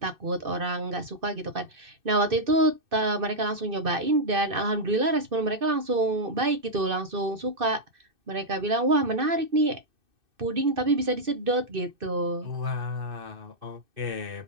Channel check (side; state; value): left; late; 2.6 ms